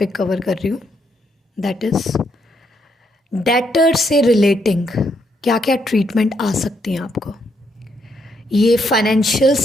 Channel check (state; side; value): normal; both; correlation 0.76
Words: कवर कर रही हूँ, दैट इज़ डेटर से रिलेटिंग क्या क्या ट्रीटमेंट आ सकती हैं आपको। ये फाइनेंशियल